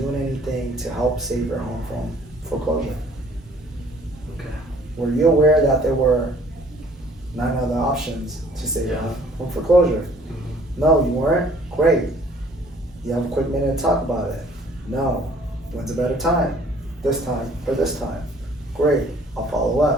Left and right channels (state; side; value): normal; both; correlation 0.57